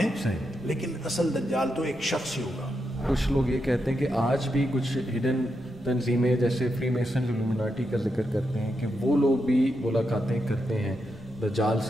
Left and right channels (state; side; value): normal; both; correlation 0.84